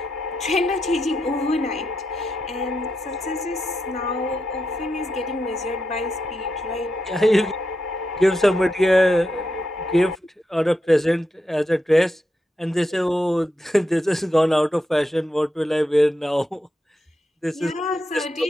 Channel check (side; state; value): both; normal; correlation 0.85